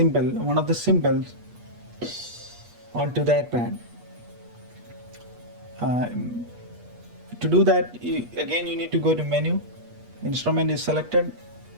one of the symbols, onto that pad. To do that, again you need to go to menu, instrument is selected,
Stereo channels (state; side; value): late; left; 8.4 ms